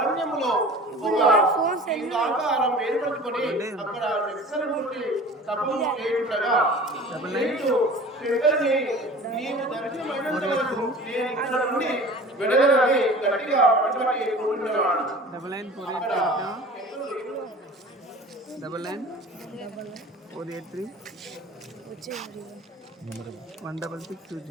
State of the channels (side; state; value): both; normal; correlation 0.41